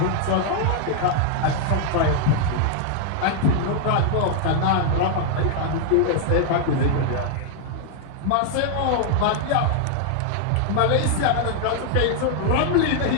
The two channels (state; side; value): different; both; correlation 0.00